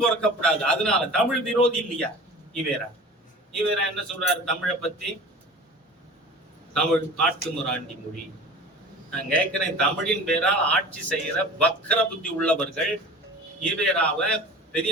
அதனால தமிழ் விரோதி இல்லையா ஈவேரா? ஈவேரா என்ன சொல்றாரு தமிழை பத்தி? தமிழ் காட்டுமிராண்டி மொழி. நான் கேட்கிறேன், தமிழின் பேரால் ஆட்சி செய்யற வக்கர புத்தி உள்ளவர்கள் ஈவேராவை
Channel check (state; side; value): normal; both; correlation 0.39